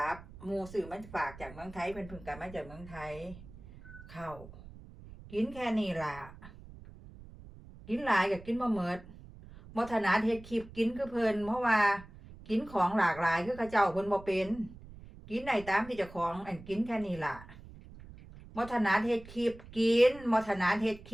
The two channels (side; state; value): right; noise; rumble, 18 dB below the sound